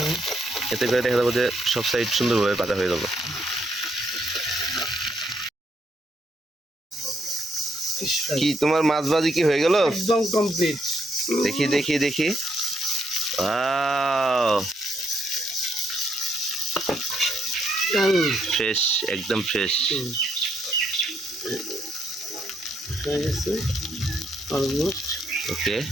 এতে করে দেখা যাবো যে সব সাইড সুন্দরভাবে পাতা হয়ে যাবো। কি তোমার মাছ ভাজি কি হয়ে গেল? একদম কমপ্লিট। দেখি দেখি দেখি, ফ্রেশ, একদম ফ্রেশ। হয়ে গেছে অলমোস্ট। ওকে,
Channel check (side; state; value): both; normal; correlation 0.74